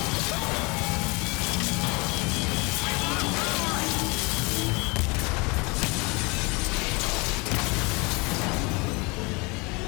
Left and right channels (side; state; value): right; quieter; 27.8 dB